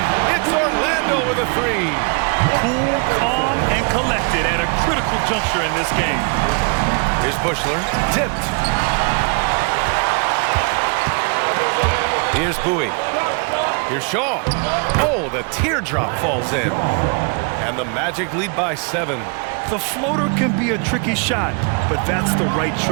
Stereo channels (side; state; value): left; quieter; 35.4 dB